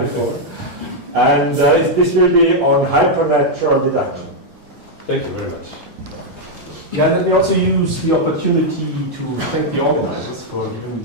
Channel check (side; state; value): left; late; 3.8 ms